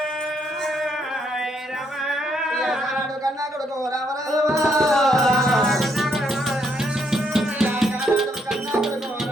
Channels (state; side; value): normal; both; correlation 0.73